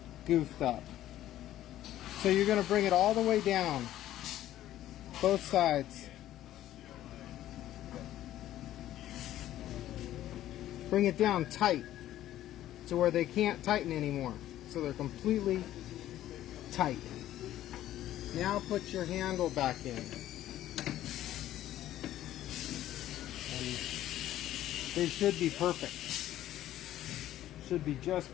goofed up. So you're going to bring it all the way down, both sides. Bring it down tight to where they can't tighten anymore. So they're completely tight. Now put your handle back in. And they should be perfect. Should be just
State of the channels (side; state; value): right; quieter; 13.2 dB